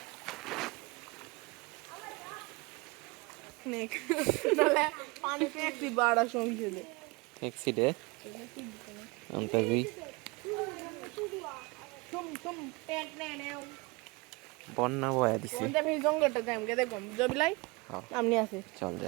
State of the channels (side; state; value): left; quieter; 25.9 dB